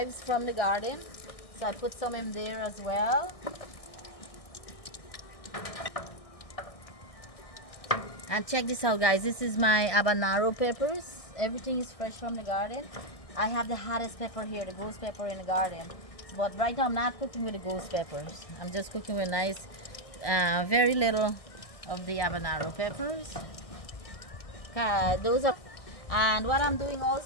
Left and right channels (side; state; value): right; late; 1.6 ms